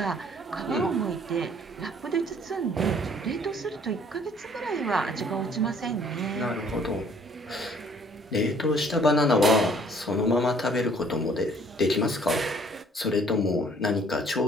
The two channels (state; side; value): normal; both; correlation 0.58